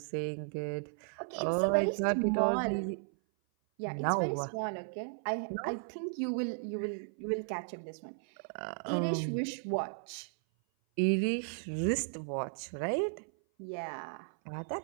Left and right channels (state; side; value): silent; left; 54 dB below the other